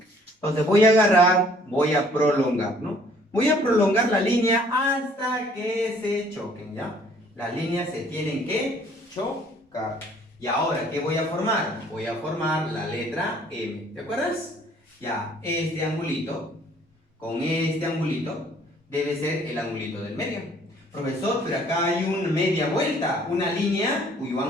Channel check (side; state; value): both; normal; correlation 0.58